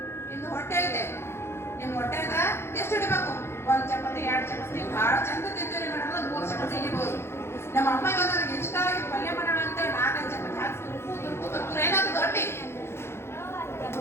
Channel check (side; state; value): right; late; 0.12 ms